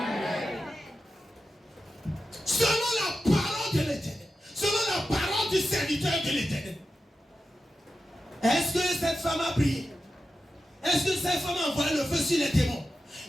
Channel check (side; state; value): both; normal; correlation 0.91